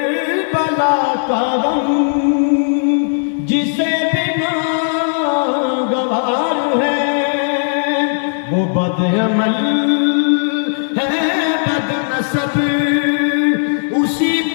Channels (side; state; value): right; silent; digital silence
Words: کا غم جسے بنا گوار ہے، وہ بد عمل ہے بد نسب اسی